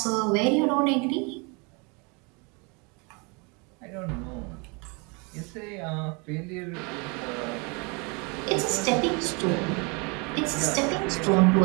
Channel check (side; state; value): left; quieter; 31.1 dB